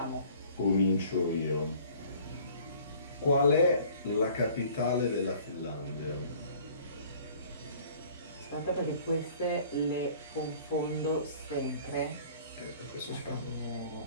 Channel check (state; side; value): inverted; both; correlation -0.52